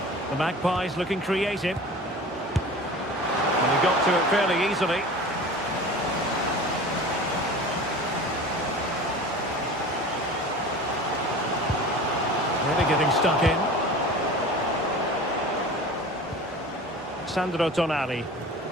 The Magpies looking creative. And he got to it fairly easily. Really getting stuck in. Sandro Tonali.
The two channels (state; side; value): normal; both; correlation 0.38